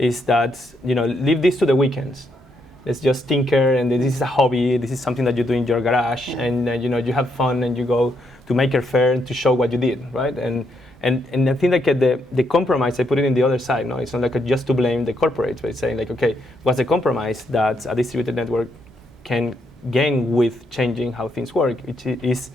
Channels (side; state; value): both; normal; correlation 0.76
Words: that, you know, leave this to the weekends. Let's just tinker, and this is a hobby. This is something that you do in your garage, and you know, you have fun, and you go to Maker Faire to show what you did, right? And I think like the compromise, I put it in the other side. No, it's not like just to blame the corporates, but it's saying like, okay, what's the compromise that a distributed network can gain with changing how things work? Which is